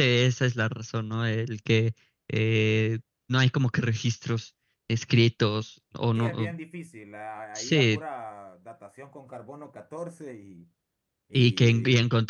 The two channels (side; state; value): both; identical; correlation 1.00